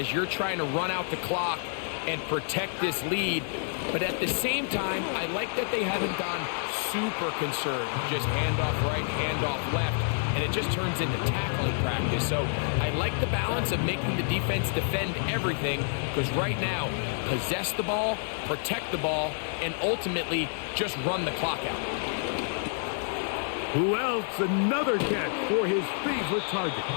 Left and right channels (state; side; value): silent; right; digital silence